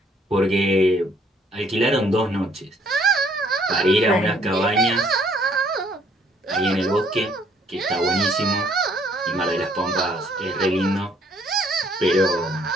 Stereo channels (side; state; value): both; normal; correlation 0.64